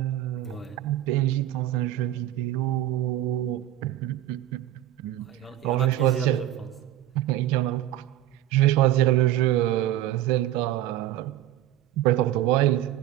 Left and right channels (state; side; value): quieter; left; 13.4 dB